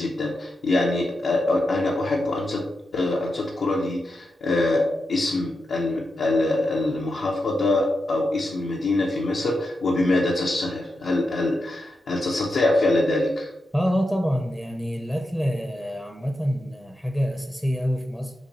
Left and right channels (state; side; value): normal; both; correlation 0.88